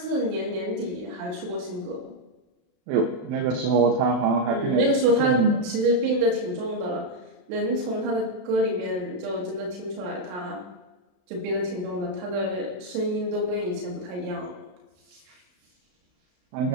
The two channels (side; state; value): left; late; 32 ms